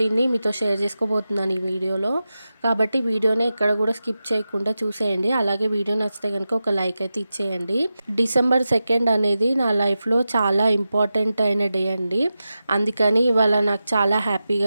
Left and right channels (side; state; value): both; inverted; correlation -0.92